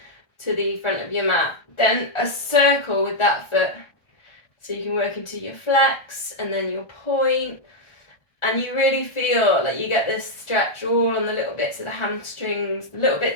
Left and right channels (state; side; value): late; right; 1.4 ms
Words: front of your mat. Then a circle with that foot. So you can work into your flex and then your point. And you really feel like you get this stretch all on the little bits of the hamstrings, the little